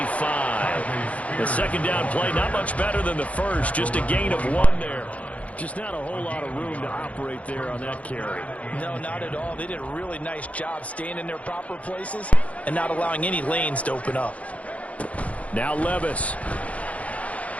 The second down play, not much better than the first. Just a gain of 1 there. Just not a whole lot of room to operate there on that carry. No, not at all. They did a really nice job staying in their proper places and not allowing any lanes to open up. Now Levis.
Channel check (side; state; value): right; late; 0.066 ms